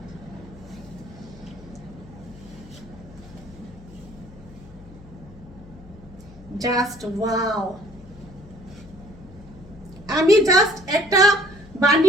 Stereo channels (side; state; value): left; noise; hum, 20 dB below the sound